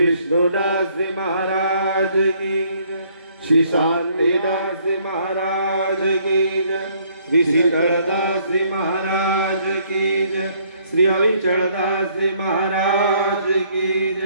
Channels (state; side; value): inverted; both; correlation -0.65